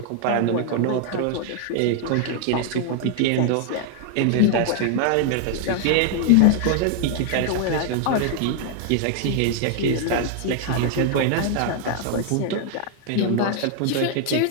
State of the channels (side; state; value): both; different; correlation 0.00